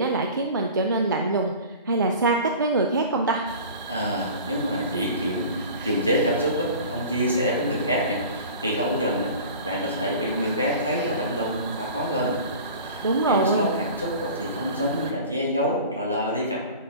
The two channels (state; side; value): inverted; both; correlation -0.40